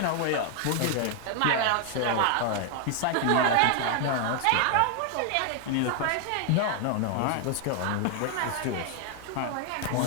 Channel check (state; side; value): different; both; correlation 0.00